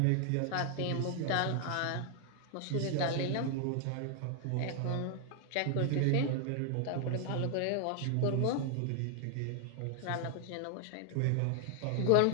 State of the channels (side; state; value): both; different; correlation 0.00